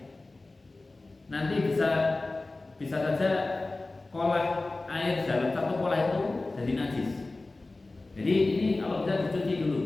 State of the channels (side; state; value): right; quieter; 3.2 dB